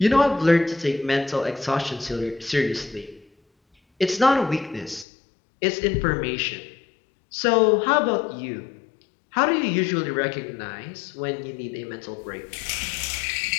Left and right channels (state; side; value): drops out; right; at 5.1 s